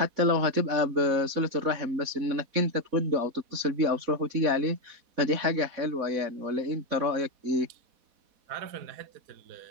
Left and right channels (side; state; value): left; late; 4.1 ms